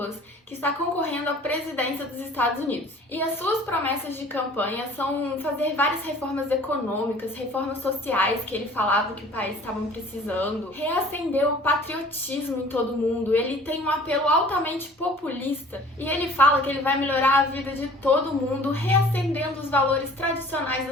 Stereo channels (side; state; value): both; normal; correlation 0.50